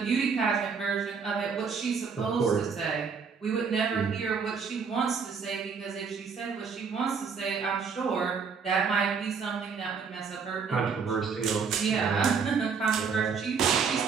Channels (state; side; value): quieter; left; 5.8 dB